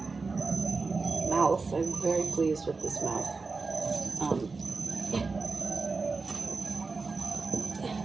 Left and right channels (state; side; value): quieter; left; 4.2 dB